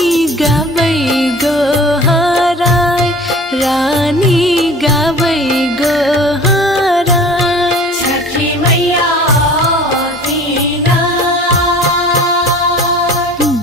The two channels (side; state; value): both; normal; correlation 0.44